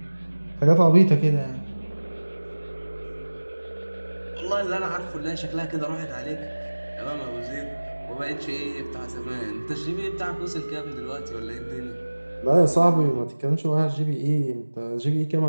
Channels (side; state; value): both; inverted; correlation -1.00